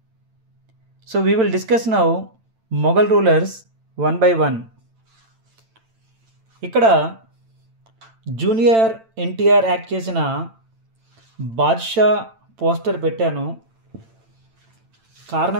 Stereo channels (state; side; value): late; left; 8.9 ms